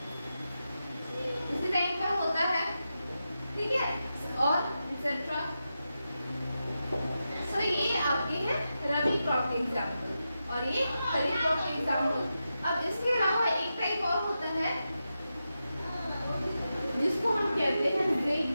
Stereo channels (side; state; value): both; inverted; correlation -0.90